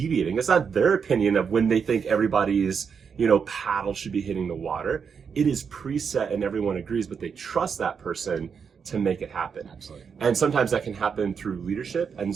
It's not their opinion of when they think everybody's, paddle should be hitting the water. It is preset and everyone agrees, but they trust that person to make it happen. Absolutely. And sometimes that can happen through leadership, and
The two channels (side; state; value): left; quieter; 6.4 dB